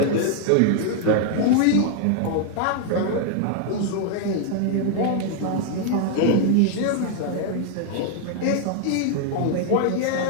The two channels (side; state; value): both; different; correlation 0.00